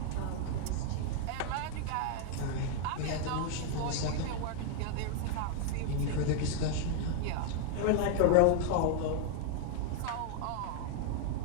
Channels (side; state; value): both; different; correlation 0.00